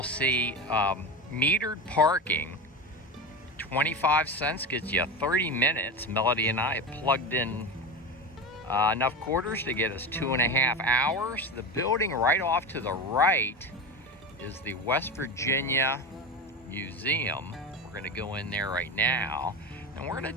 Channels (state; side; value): normal; both; correlation 0.23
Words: see metered parking. 25 cents gets you 30 minutes. Melody and I plugged in enough quarters to get us 2.5 hours. The building right off to the right is the West Virginia Museum. We're going to go in there right now, and we're going